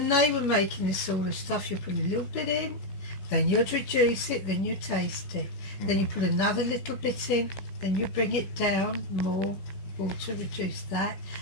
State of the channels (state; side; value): late; right; 15 ms